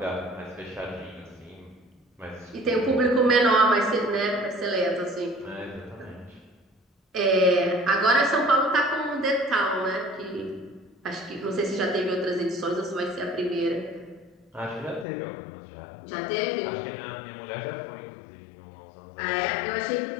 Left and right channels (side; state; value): right; drops out; at 15.1 s